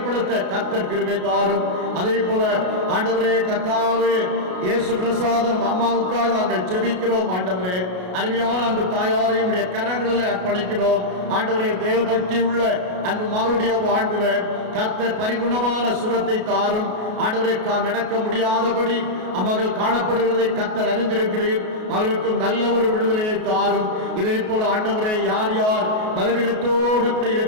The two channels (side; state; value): left; late; 33 ms